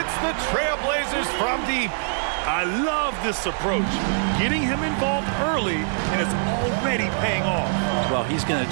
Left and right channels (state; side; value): silent; left; digital silence